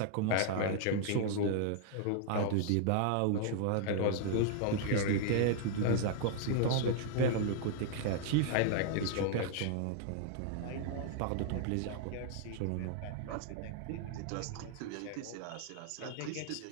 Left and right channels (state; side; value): different; both; correlation -0.01